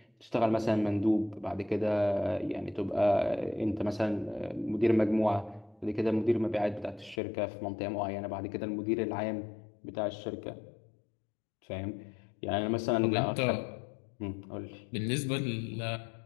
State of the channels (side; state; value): right; drops out; at 7.2 s